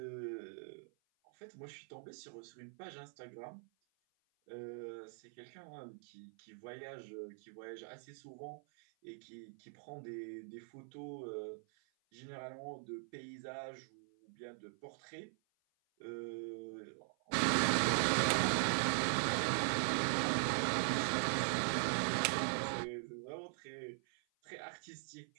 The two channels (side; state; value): left; silent; 50 dB below the other